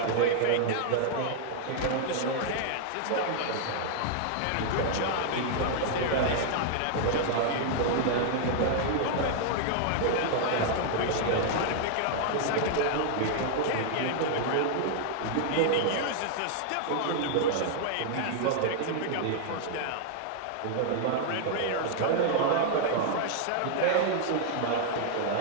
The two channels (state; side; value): different; both; correlation -0.01